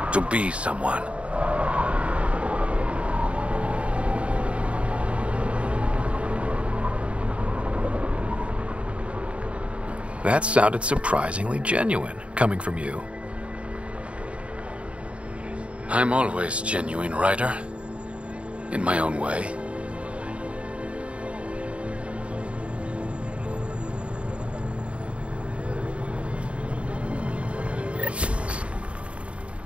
To be someone. That sounded surprisingly genuine, coming from you. I'm always genuine, Ryder. In my own way.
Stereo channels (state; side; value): late; left; 0.061 ms